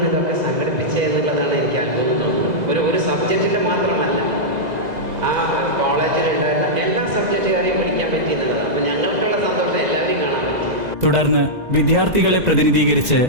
ഇതൊക്കെ സംഘടിപ്പിച്ചത് എന്നുള്ളതാണ് എനിക്ക് അത്ഭുതം തോന്നുന്നത്. ഒരു സബ്ജക്റ്റിൻ്റെ മാത്രമല്ല, ആ കോളേജിലുണ്ടായിരുന്ന എല്ലാ സബ്ജക്റ്റുകാരെയും പഠിക്കാൻ പറ്റി എന്നുള്ളതാണ്. അപ്പം ഞങ്ങൾക്കുള്ള സന്തോഷം എല്ലാവരെയും കാണാൻ പറ്റി. തുടർന്ന് വിദ്യാർത്ഥികളെ പ്രതിനിധീകരിച്ച്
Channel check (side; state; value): left; late; 2.0 ms